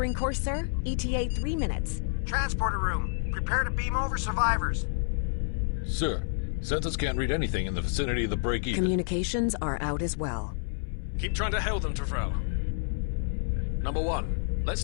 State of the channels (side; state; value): right; silent; 59 dB below the other